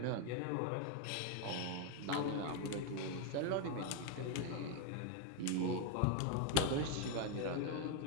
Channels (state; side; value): different; both; correlation 0.01